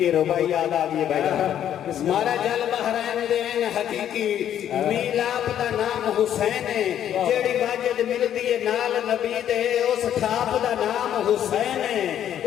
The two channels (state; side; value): quieter; right; 10.4 dB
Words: ربائی یاد آگئی بھائی مارا جل بحرین دین حقیقی میلاب دا نام حسین ہے جیڑی واجد مل دیئے نال نبی دے اس ٹھاپ دا نام حسین ہے